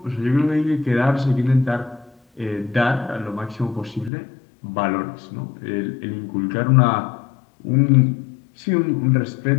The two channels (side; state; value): right; drops out; at 4.1 s